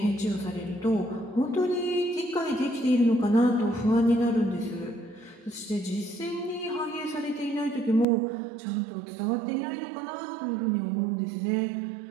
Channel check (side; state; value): left; drops out; at 8.1 s